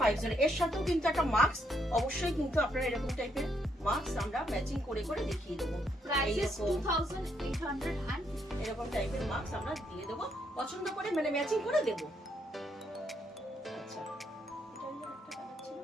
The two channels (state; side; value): normal; both; correlation 0.74